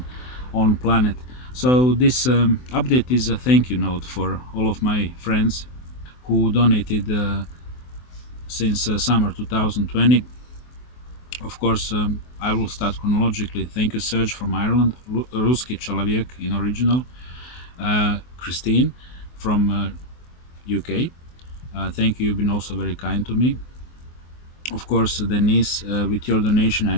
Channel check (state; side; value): late; right; 24 ms